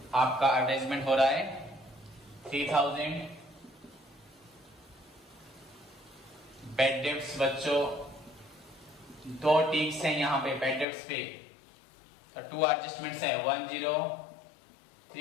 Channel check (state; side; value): drops out; right; at 10.9 s